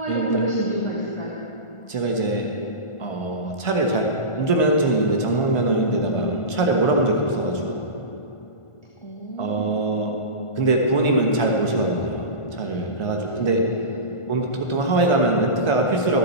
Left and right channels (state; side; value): late; right; 1.5 ms